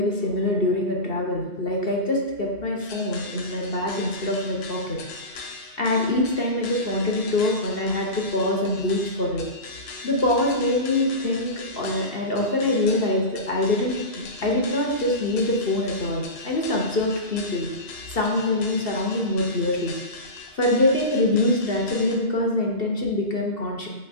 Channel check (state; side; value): late; right; 2.7 ms